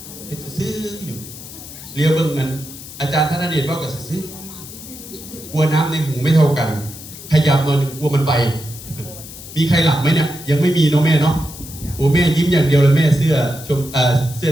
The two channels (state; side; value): noise; left; hiss, 14 dB below the sound